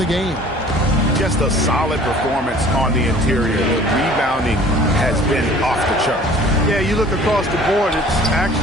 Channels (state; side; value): normal; both; correlation 0.50